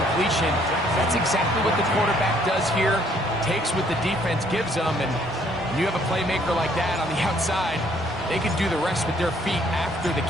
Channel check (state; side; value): normal; both; correlation 0.64